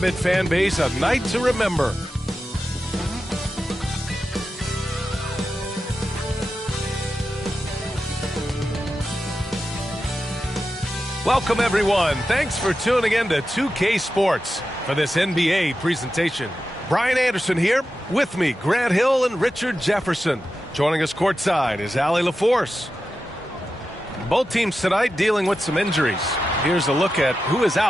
fan base a night to remember. Welcome, everyone. Thanks for tuning in to 2K Sports for this NBA presentation. Brian Anderson here. With me, Grant Hill and Richard Jefferson. Joining us courtside is Allie LaForce. Both teams tonight dealing with some injuries. Here's a look at who is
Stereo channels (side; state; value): both; normal; correlation 0.91